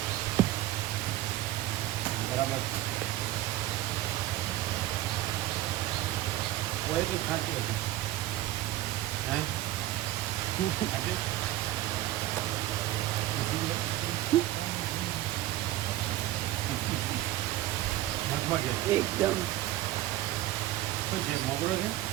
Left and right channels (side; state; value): left; quieter; 15.0 dB